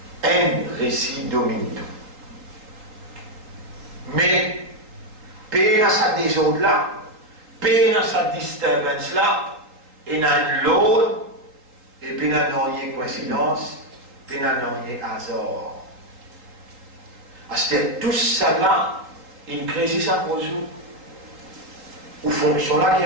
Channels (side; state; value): left; late; 3.7 ms